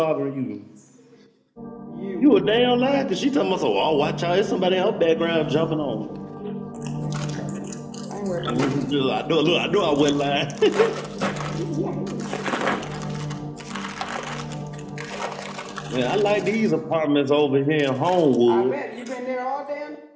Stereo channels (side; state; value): both; identical; correlation 1.00